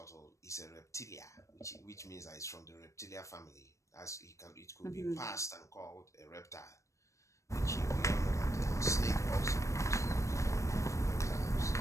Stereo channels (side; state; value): right; late; 0.15 ms